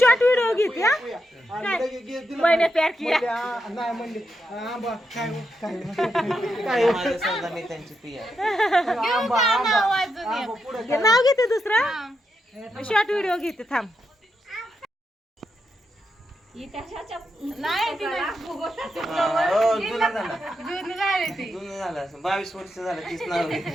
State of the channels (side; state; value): both; normal; correlation 0.84